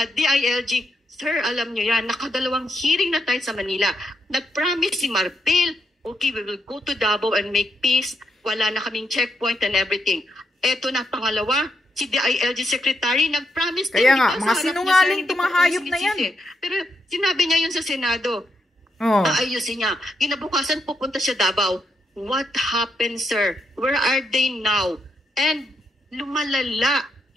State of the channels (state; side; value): normal; both; correlation 0.81